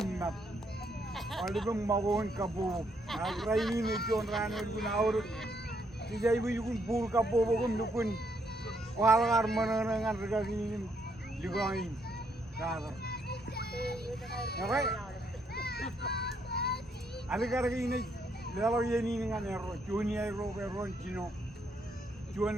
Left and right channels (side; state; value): both; normal; correlation 0.73